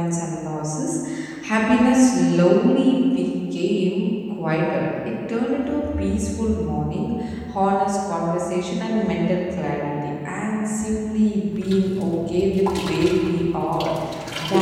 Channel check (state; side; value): identical; both; correlation 1.00